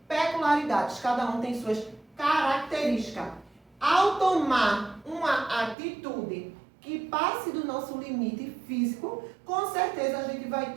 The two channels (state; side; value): drops out; left; at 5.8 s